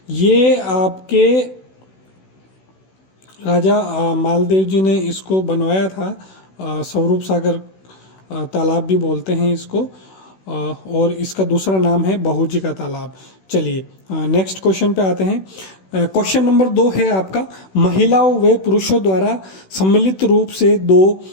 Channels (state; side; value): late; right; 16 ms